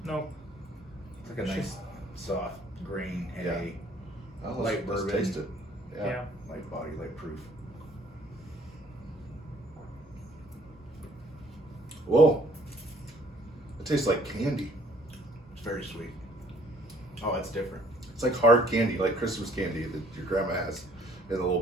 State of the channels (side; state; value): both; normal; correlation 0.59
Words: Nope. It's like a nice, soft, green, hay, Oh, Light let's bourbon. taste it. Yeah. light body, light proof. Whoa. It tastes like candy. It's very sweet. Oh, that's different. It's like hard candy, like Christmas candy that your grandma has in a little